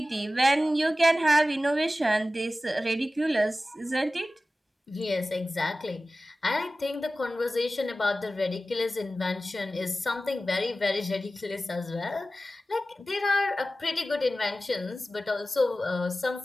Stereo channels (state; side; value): normal; both; correlation 0.95